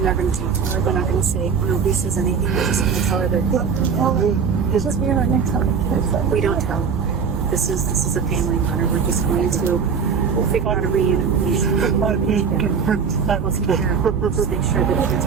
not going to talk to her. They're not going to say nobody says anything. They're just going to tell her that. It's just we're not going to tell the kids. We don't tell. This is a family matter. We're just going to. We'll figure out a reunification. I need to protect We'll take care of it. Just make sure that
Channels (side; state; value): left; quieter; 6.2 dB